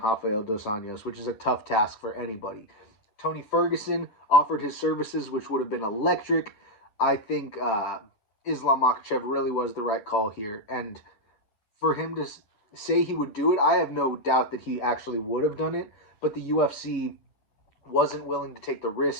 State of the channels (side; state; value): right; late; 10 ms